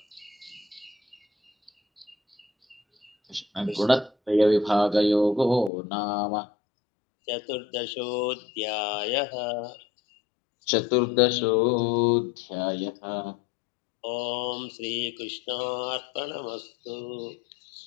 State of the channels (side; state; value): right; drops out; at 5.7 s